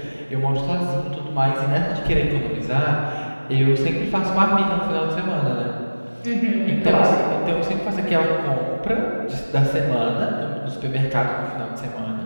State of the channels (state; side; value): inverted; both; correlation -1.00